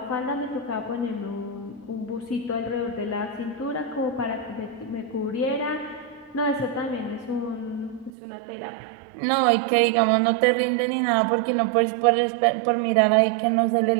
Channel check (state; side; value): drops out; left; at 8.1 s